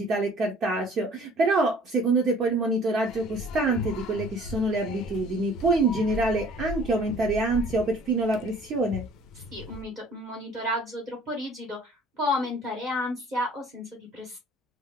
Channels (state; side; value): normal; both; correlation 0.52